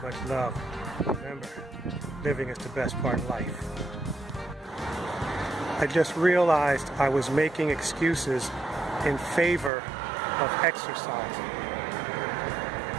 much love. Remember, living is the best part of life. I just realized I was making excuses in favor of exercising.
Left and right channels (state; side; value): drops out; left; at 9.7 s